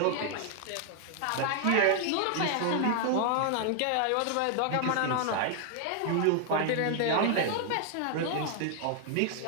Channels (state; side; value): different; both; correlation 0.00